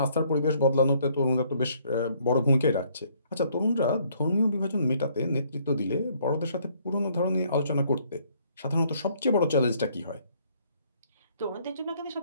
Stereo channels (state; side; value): inverted; both; correlation -0.64